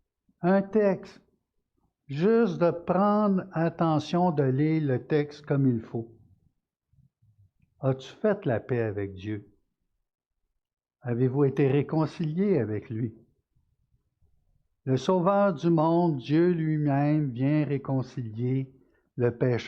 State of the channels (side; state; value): both; identical; correlation 1.00